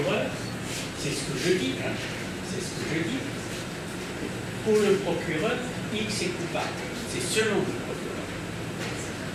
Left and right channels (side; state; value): both; identical; correlation 1.00